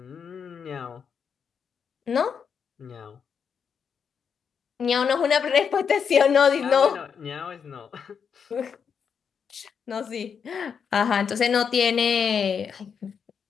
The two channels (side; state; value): right; quieter; 6.8 dB